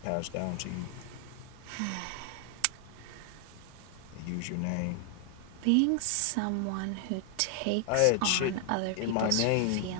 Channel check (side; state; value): both; different; correlation 0.00